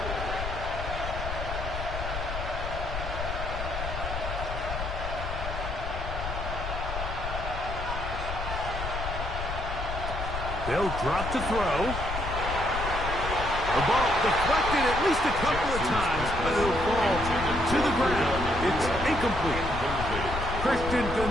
They'll drop to throw. The ball deflected at least a couple of times, but it'll fall to the ground. It's incomplete. Christian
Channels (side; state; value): left; noise; rumble, 5 dB below the sound